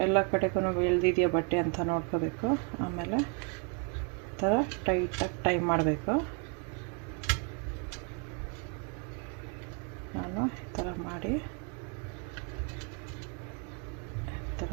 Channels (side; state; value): left; quieter; 38.2 dB